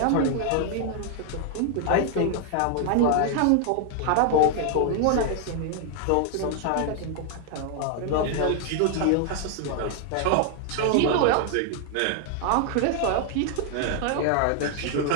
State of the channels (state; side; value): different; both; correlation 0.00